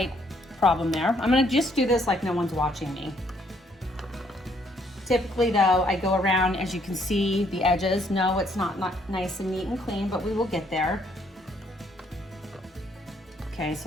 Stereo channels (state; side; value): normal; both; correlation 0.68